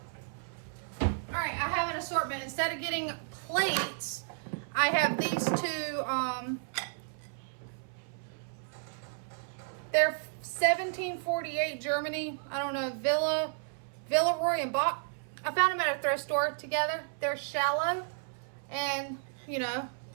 All right, I have an assortment. Instead of getting plates, I have these two. They're 1748 Germany. I don't know, Villeroy and Bach. I found them at a thrift store together. They're shallow and, you know,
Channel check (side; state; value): left; silent; 56 dB below the other